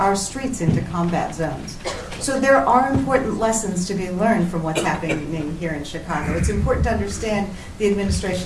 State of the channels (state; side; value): identical; both; correlation 1.00